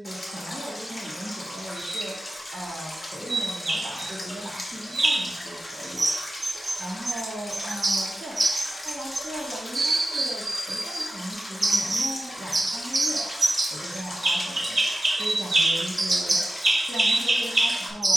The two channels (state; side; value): normal; both; correlation 0.95